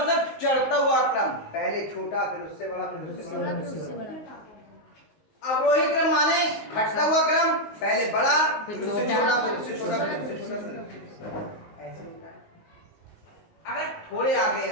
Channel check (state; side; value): late; right; 19 ms